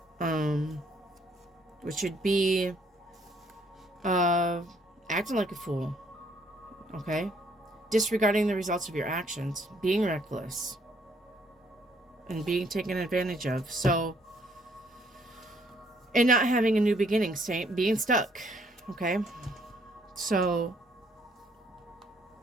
which would be acting like a fool, okay? Disregarding the results of your actions, being reckless, and being taken advantage of. So, and not having a new beginning, being stuck, okay? So,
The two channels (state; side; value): normal; both; correlation 0.66